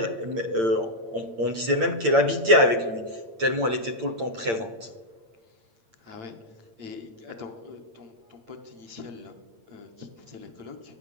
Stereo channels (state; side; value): late; left; 8.8 ms